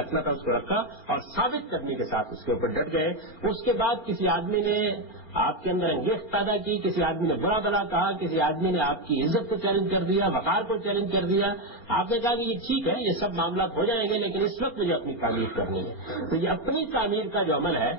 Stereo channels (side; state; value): right; late; 4.4 ms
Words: تھا اس کو رکھا اور ثابت کرنے کے ساتھ اس کے اوپر ڈٹ گئے۔ اس کے بعد کسی آدمی نے آپ کے اندر انگیخت پیدا کی، کسی آدمی نے برا بھلا کہا، کسی آدمی نے آپ کی عزت کو چیلنج کر دیا، وقار کو چیلنج کر دیا، آپ نے کہا کہ یہ ٹھیک ہے، یہ سب معاملات ہو جائیں گے لیکن اس وقت مجھے اپنی تعمیر کرنی ہے۔ تو یہ اپنی تعمیر کا جو عمل ہے